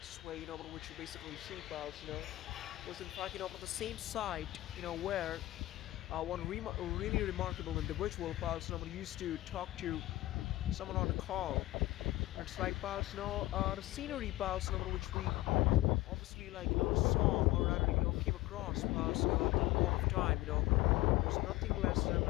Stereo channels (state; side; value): quieter; right; 17.7 dB